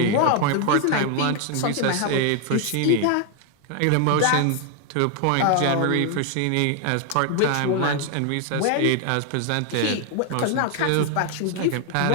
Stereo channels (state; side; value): different; both; correlation 0.00